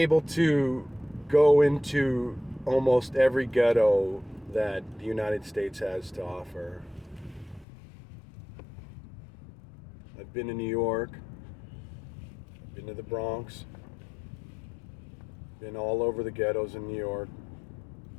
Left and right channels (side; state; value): right; drops out; at 7.7 s